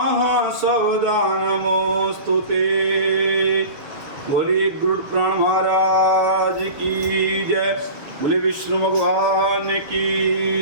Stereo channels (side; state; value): left; late; 6.8 ms